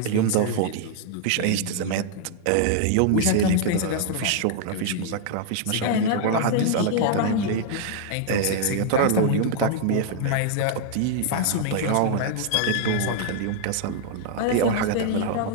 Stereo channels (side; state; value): both; different; correlation -0.01